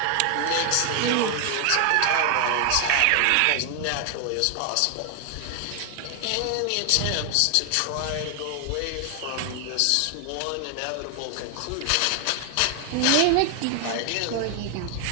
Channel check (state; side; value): different; both; correlation 0.00